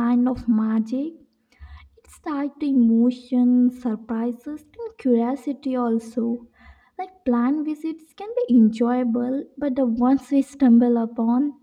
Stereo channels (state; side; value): identical; both; correlation 1.00